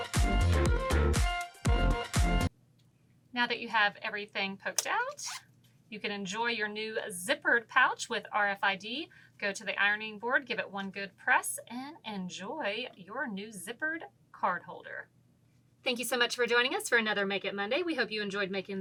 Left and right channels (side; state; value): both; identical; correlation 1.00